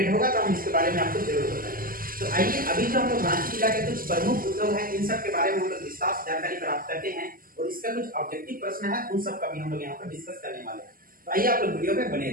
होगा तो हम इसके बारे में आपको जरूर बताएंगे। तो आइए अभी जो हम लोग रांची जिला के कुछ प्रमुख उद्योग हैं, इन सब के बारे में हम लोग विस्तार से जानकारी प्राप्त करते हैं और इसका कुछ ऑब्जेक्टिव प्रश्न है, उन सब का भी हम लोग यहाँ पर डिस्कस करने वाले हैं। तो आइए आप लोग वीडियो में बने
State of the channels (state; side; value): late; left; 0.42 ms